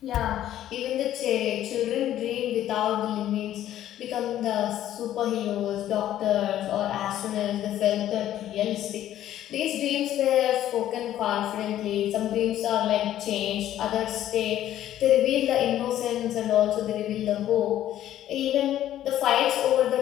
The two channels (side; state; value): right; quieter; 12.3 dB